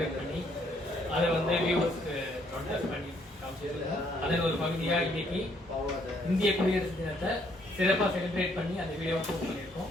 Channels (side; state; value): both; normal; correlation 0.69